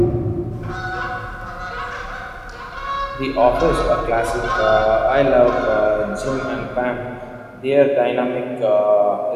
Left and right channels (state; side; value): identical; both; correlation 1.00